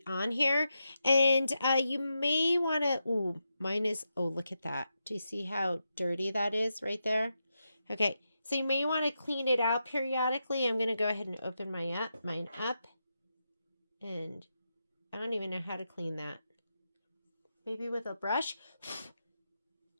on here, and you may want to, ooh, mine is, oh, look at that. Do you see how dirty that is right there? Okay, so you may want to clean it out periodically. I'm going to go ahead and open mine up, and I don't even know how to clean that. Maybe with a brush.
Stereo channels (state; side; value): inverted; both; correlation -0.87